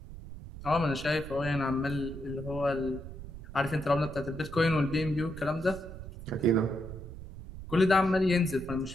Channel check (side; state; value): right; noise; rumble, 12 dB below the sound